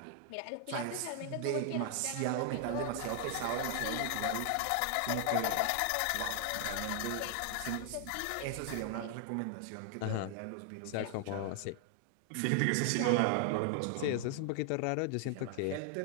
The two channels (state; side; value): different; both; correlation 0.00